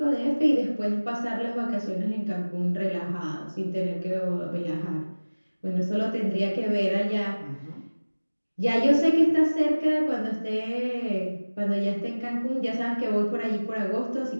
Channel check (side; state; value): both; inverted; correlation -1.00